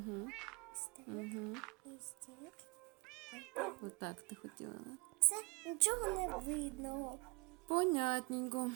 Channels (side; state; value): left; quieter; 30.2 dB